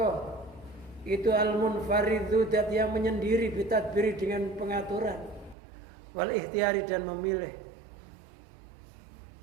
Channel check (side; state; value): left; drops out; at 5.6 s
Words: itu al-munfaridhu dat yang menyendiri, bitadbiri dengan pengaturan, wal ikhtiari dan memilih.